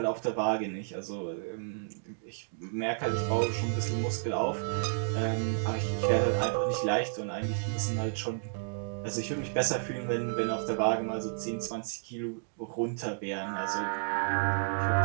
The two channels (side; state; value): left; silent; digital silence